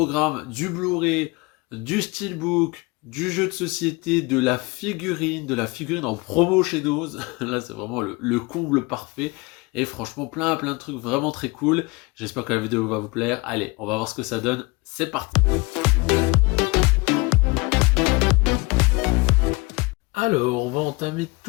du Blu-ray, du Steelbook, du jeu de société, de la figurine en promo chez Nose. Là c'est vraiment le comble parfait. Et franchement plein de trucs vraiment très cool. J'espère que la vidéo va vous plaire. Allez, on va voir ce que ça donne. C'est parti. Alors, on va entamer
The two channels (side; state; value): right; quieter; 25.7 dB